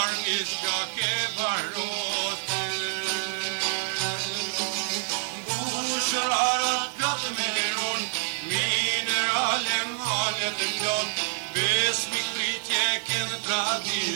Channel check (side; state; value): left; silent; digital silence